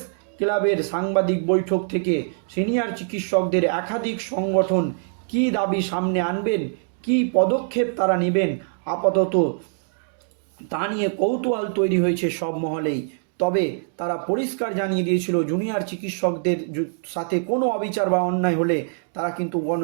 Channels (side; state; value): left; silent; digital silence